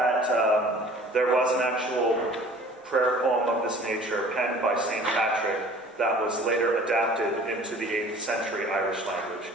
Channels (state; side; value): normal; both; correlation 0.48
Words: there was an actual prayer poem of this nature penned by St. Patrick that was later adapted into the 8th century Irish language.